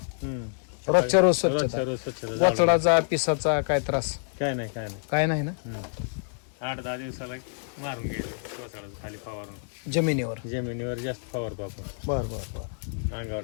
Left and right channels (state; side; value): silent; right; digital silence